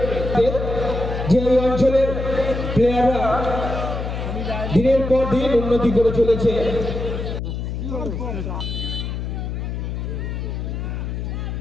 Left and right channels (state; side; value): noise; left; hum, 4 dB below the sound